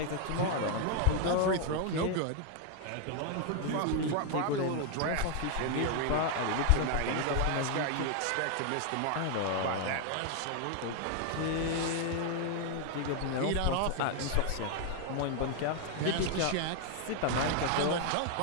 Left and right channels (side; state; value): both; different; correlation 0.00